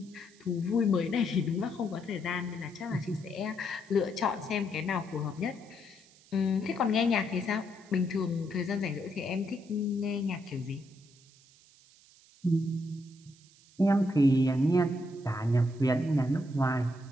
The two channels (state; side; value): noise; right; hiss, 27 dB below the sound